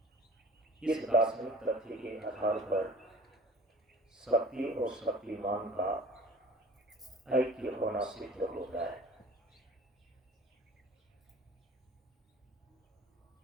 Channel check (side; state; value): both; normal; correlation 0.46